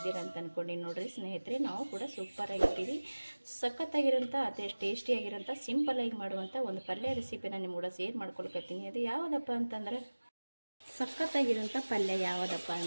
ಅಂತ ಅಂದ್ಕೊಂಡು ನೋಡಿರಿ ಸ್ನೇಹಿತರೆ, ನಾವು ಕೂಡ ಸೂಪರ್ ಆಗಿರ್ತೀವಿ. ಸಖತ್ತಾಗಿರೋಂಥ ಅದೇ ಟೇಸ್ಟಿಯಾಗಿರೋಂಥ ಸಿಂಪಲ್ಲಾಗಿ ಮಾಡುವಂಥ ಒಂದು ಪಲ್ಯ ರೆಸಿಪಿನ ನಿಮ್ಮ ಕೂಡ ಶೇರ್ ಮಾಡ್ಕೊಳ್ಕತ್ತೀನಿ. ಅದು ಯಾವುದಪ್ಪ ಅಂತಂದ್ರೆ ಸಖತ್ತಾಗಿರೋಂಥ ಪಲ್ಯ ಯಾವುದಪ್ಪ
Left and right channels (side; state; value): both; inverted; correlation -1.00